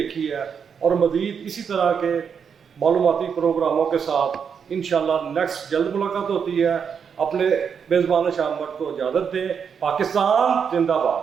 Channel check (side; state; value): left; quieter; 6.9 dB